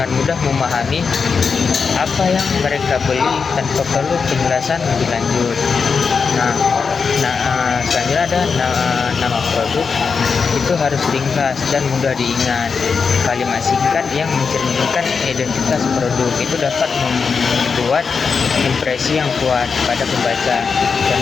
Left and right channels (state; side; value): quieter; right; 5.4 dB